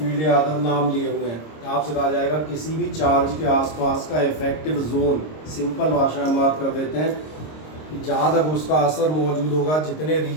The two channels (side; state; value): right; late; 26 ms